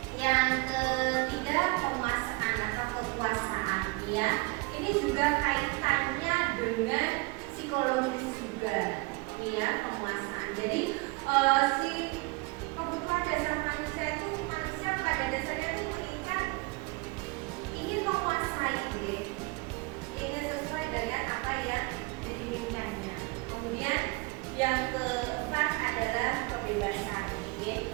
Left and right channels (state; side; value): quieter; left; 25.9 dB